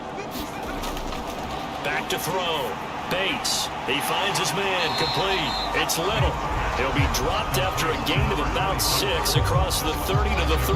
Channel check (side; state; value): both; identical; correlation 1.00